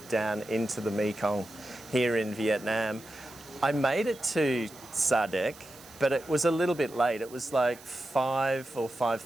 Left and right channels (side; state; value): right; noise; hiss, 21 dB below the sound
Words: down into the Mekong here in Vietnam. I made it to Sa Đéc, but it was a little bit late. It was like 5 or